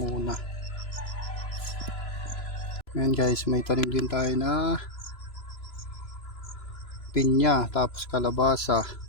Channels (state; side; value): late; right; 3.0 ms